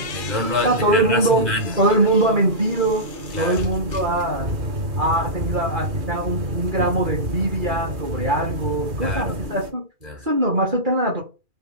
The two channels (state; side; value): late; left; 2.4 ms